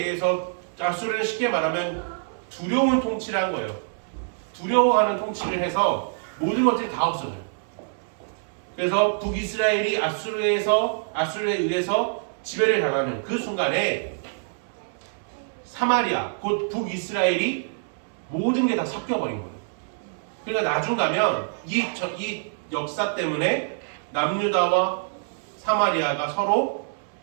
아수르는 쉽게 말하면 두려운 통치를 한 거예요. 두려워하는 통치를 해서 모든 것들이 다 없어져요. 그래서 북이스라엘이 아수르에 의해서 지배를 당하는 그 순간에 사마리아, 곧 북이스라엘이 모든 게 다 섞여버린 거예요. 그러니까 나중 가면 이 역사 때문에 남유다와 사마리아가 서로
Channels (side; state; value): left; silent; 61 dB below the other